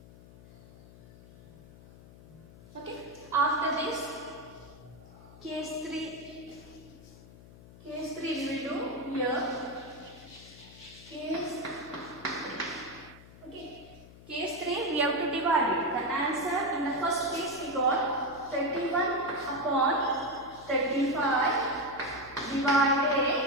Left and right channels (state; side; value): noise; left; hum, 20 dB below the sound